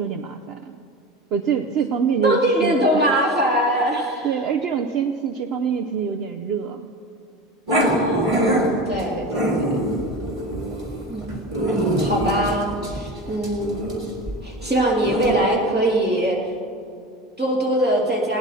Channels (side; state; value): both; normal; correlation 0.30